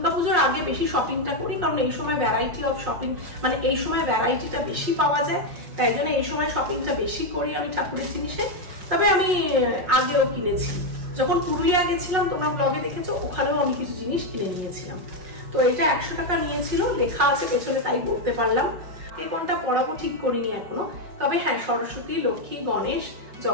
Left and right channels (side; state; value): left; late; 5.5 ms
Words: আগে বেশি শপিংটা করি, কারণ এই সময় ভ্যারাইটি অফ শপিং, মানে এই সময় ভ্যারাইটিটা বেশি পাওয়া যায়। তাই জন্য এই সময় শপিংটা বেশি করি আমি ঠাকুরের জিনিসে। তবে আমি আগেও কিনেছি, যখন পুরুলিয়া গেছিলাম তোমরা ব্লগে দেখেছো, ওখানেও আমি কিছু জিনিস কিনে নিয়েছিলাম। তো এটা 100 টাকা নিয়েছিল, লেখা আছে পেছনে তাই বলতে পারলাম। এ কোনটা পড়াবো ঠিক করিনি এখনো। তবে হ্যাঁ, সরস্বতী, লক্ষ্মী, গণেশ,